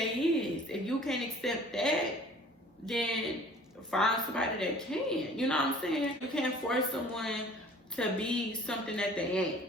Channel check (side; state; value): both; normal; correlation 0.49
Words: is. If you can't accept that, then find somebody that can. You know what I'm saying? You can't force someone to be something that they ain't.